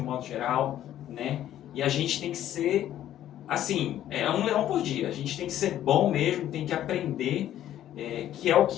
modo geral, né? E a gente tem que ser, assim, um leão por dia. A gente tem que ser bom mesmo, tem que aprender, que é o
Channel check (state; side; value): quieter; right; 12.0 dB